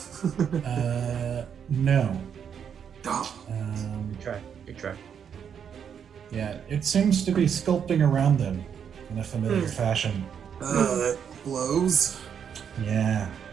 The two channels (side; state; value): left; quieter; 7.8 dB